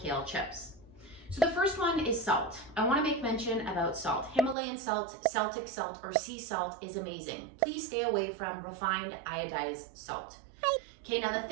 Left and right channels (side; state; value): left; drops out; at 4.5 s